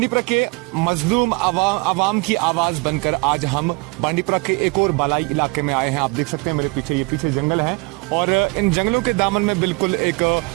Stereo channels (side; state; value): left; quieter; 28.1 dB